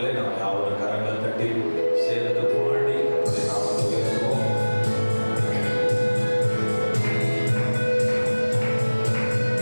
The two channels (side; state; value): both; inverted; correlation -1.00